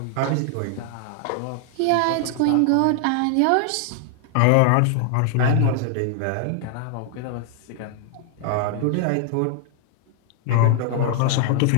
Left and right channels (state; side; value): different; both; correlation 0.00